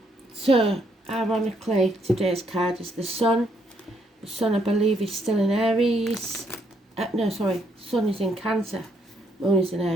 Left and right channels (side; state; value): both; normal; correlation 0.72